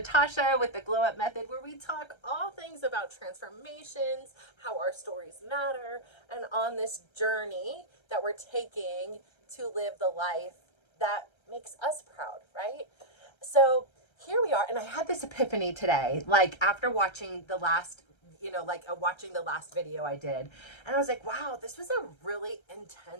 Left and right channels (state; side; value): late; right; 1.3 ms